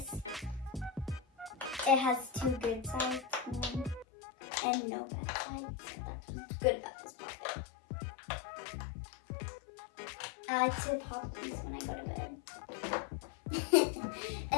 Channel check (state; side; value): drops out; right; at 4.0 s